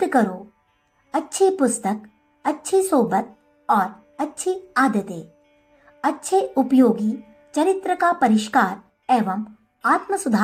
करो: अच्छी पुस्तक, अच्छी सोबत और अच्छी आदतें। अच्छे उपयोगी चरित्र का परिष्कार एवं आत्म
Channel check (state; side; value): identical; both; correlation 1.00